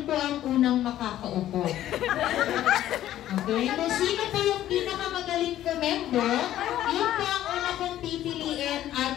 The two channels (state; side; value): quieter; right; 12.7 dB